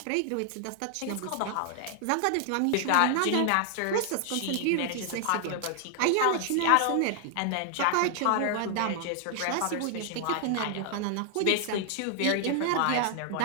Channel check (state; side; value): different; both; correlation 0.00